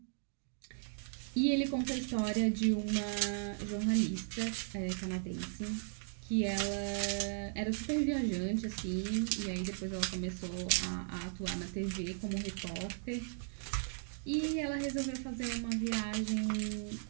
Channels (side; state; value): left; silent; digital silence